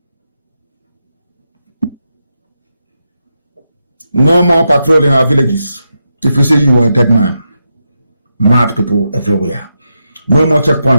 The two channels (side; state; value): both; inverted; correlation -0.86